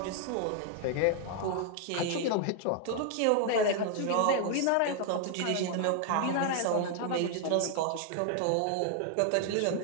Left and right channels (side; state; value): both; different; correlation 0.00